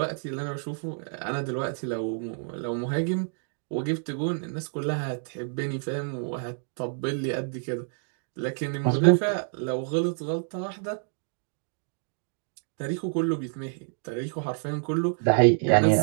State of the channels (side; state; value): left; silent; 59 dB below the other